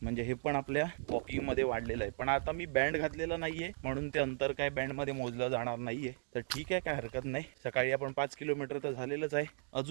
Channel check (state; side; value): silent; left; digital silence